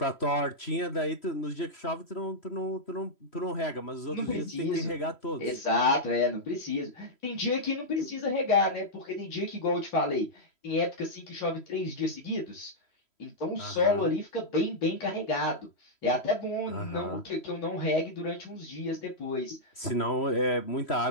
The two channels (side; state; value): right; late; 3.1 ms